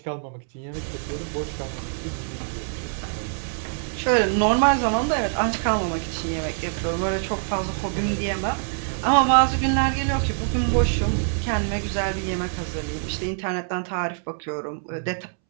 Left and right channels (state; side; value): silent; left; 62 dB below the other